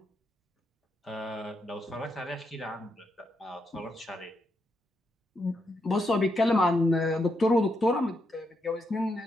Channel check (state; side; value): normal; both; correlation 0.81